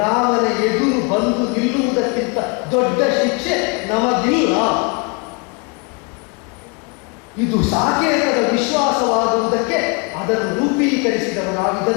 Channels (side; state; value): right; quieter; 32.0 dB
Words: ಎದುರು ಬಂದು ನಿಲ್ಲುವುದಕ್ಕಿಂತ ದೊಡ್ಡ ಶಿಕ್ಷೆ ನಮಗಿಲ್ಲ. ಇದು ಸಾಕೇತದ ವಿಶ್ವಾಸವಾಗುವುದಕ್ಕೆ ಅದನ್ನು